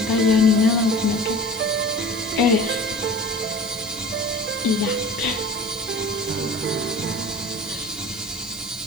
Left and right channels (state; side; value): noise; right; hiss, 17 dB below the sound